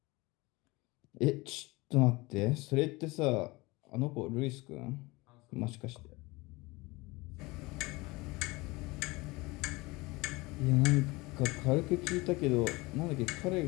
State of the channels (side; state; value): right; quieter; 23.0 dB